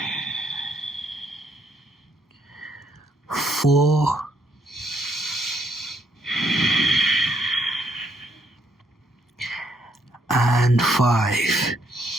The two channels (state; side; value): normal; both; correlation 0.72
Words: 4, and 5.